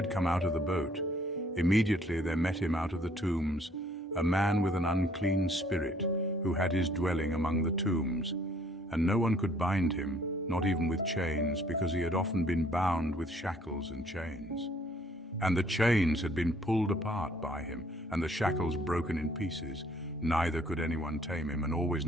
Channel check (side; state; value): both; normal; correlation 0.61